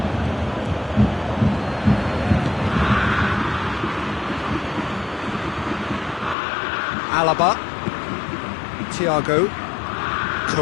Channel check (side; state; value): right; drops out; at 6.4 s